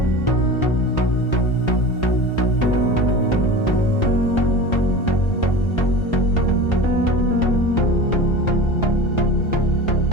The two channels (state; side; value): late; right; 1.3 ms